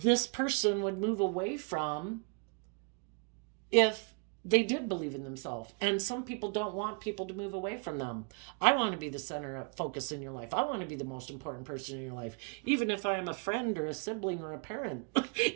person would move away from if they did believe in themselves. And some people don't want people to move away from them. I want to be the center of focus in your life. I want to be the most important person in your life, even if I'm a friend or a sibling or a parent.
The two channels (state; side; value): quieter; left; 37.2 dB